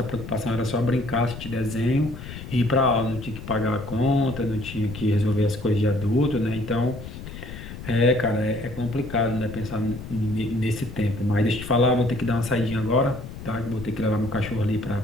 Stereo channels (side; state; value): left; noise; rumble, 11 dB below the sound